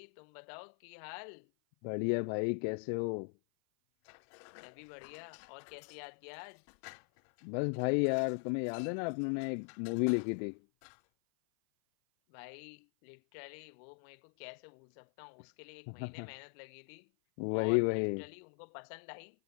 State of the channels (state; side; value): silent; right; 52 dB below the other